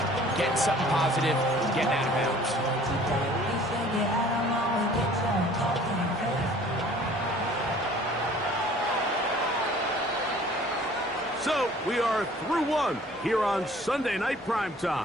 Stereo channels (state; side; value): normal; both; correlation 0.51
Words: getting something positive, getting out of bounds. So, we are through one here on Sunday Night